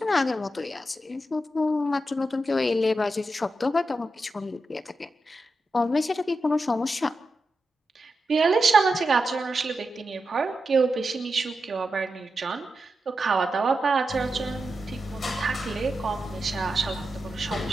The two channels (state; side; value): normal; both; correlation 0.89